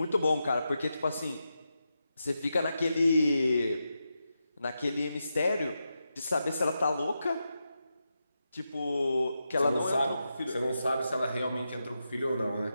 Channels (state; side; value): inverted; both; correlation -0.88